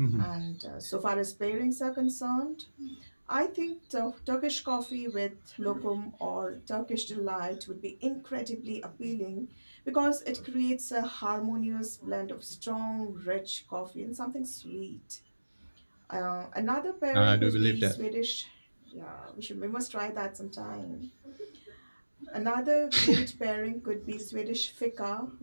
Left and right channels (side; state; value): both; inverted; correlation -1.00